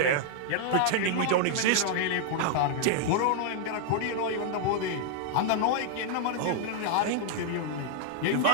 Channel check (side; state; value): both; different; correlation -0.01